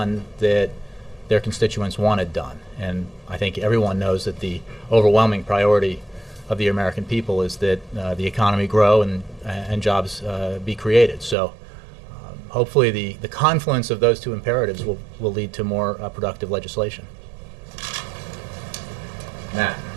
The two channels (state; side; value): drops out; left; at 11.4 s